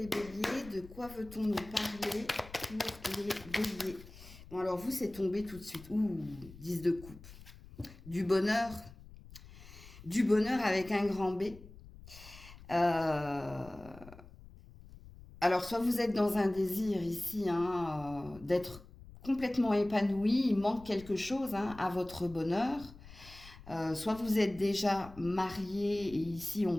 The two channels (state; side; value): noise; left; rumble, 18 dB below the sound